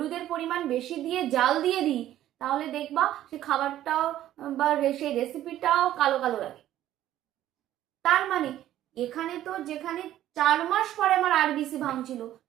পরিমাণ বেশি দিয়ে জাল দিয়ে দিই তাহলে দেখবা সেই খাবারটাও বা সেই রেসিপিটাও কালো কালো লাগে। তার মানে এখানে তো যেখানে 4 মাস পরে আমার আরবিসি ভাঙছিল,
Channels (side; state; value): left; quieter; 12.9 dB